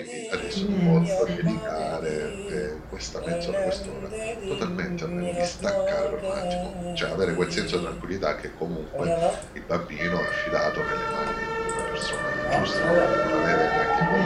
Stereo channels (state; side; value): identical; both; correlation 1.00